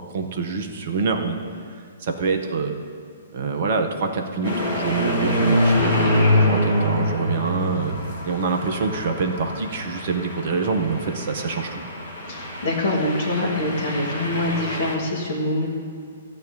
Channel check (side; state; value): both; inverted; correlation -0.53